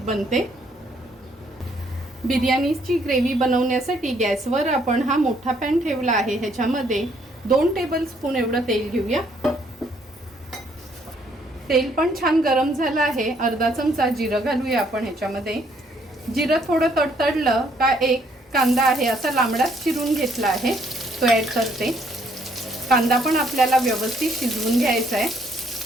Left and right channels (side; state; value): both; normal; correlation 0.67